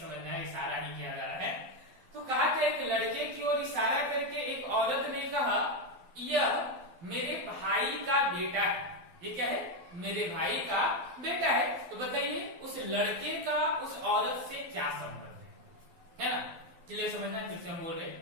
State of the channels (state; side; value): late; left; 12 ms